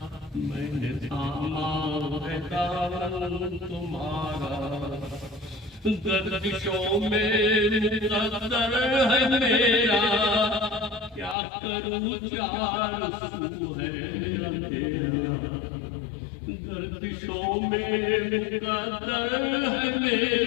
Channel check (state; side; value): drops out; right; at 11.4 s